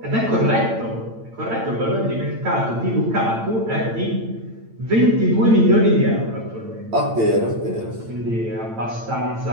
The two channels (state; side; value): late; left; 8.9 ms